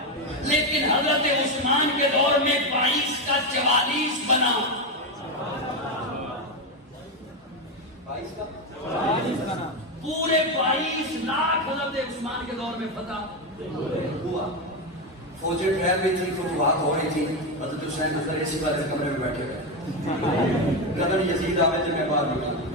لیکن حضرت عثمان کے دور میں 22 کا 44 بنا، 22 کا 44 بنا، پورے 22 لاکھ حضرت عثمان کے دور میں فتح ہوا۔ فوجیں ٹھہر رہی تھی، فتوحات ہو رہی تھی، حضرت حسین اندر اسی بات کمرے میں بیٹھے ہوئے، قدر یزید آوے تو میں باہر نکلا،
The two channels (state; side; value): normal; both; correlation 0.10